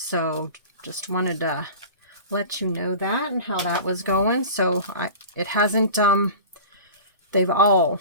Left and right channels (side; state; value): both; inverted; correlation -0.37